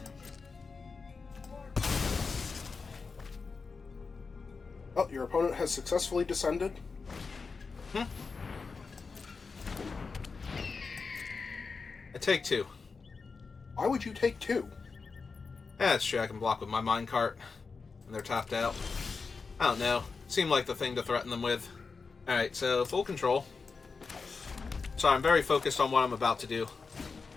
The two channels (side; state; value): right; quieter; 4.7 dB